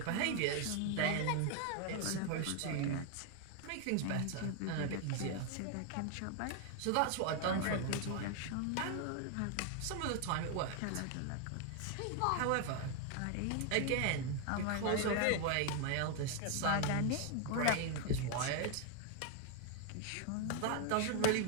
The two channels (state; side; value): different; both; correlation 0.01